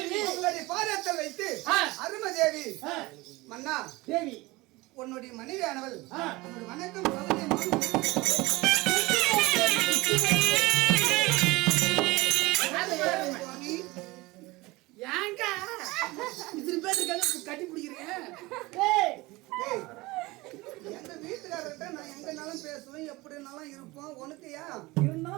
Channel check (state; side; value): quieter; left; 21.6 dB